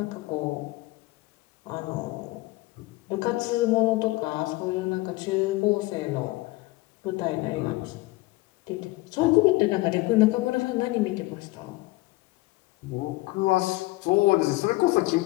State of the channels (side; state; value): right; quieter; 20.4 dB